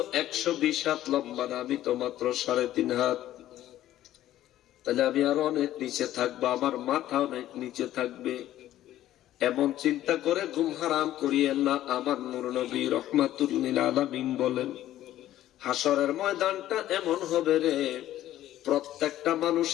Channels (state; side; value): quieter; right; 13.4 dB